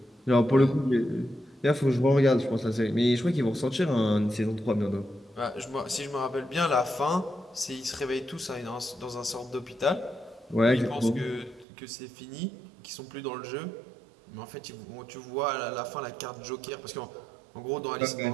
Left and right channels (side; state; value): left; drops out; at 11.7 s